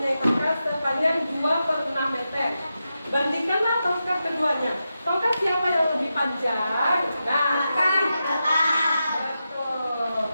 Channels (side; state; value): both; inverted; correlation -0.89